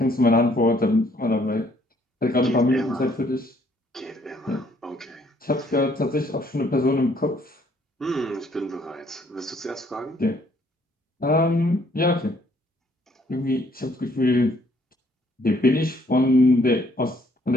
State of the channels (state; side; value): normal; both; correlation 0.65